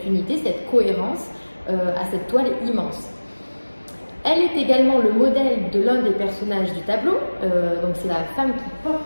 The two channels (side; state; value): both; inverted; correlation -1.00